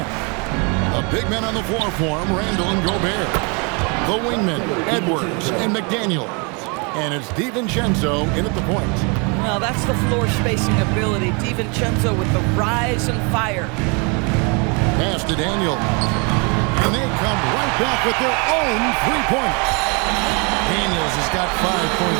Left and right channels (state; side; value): quieter; left; 32.8 dB